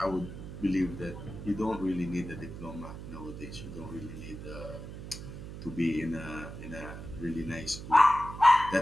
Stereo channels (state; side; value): noise; right; hum, 10 dB below the sound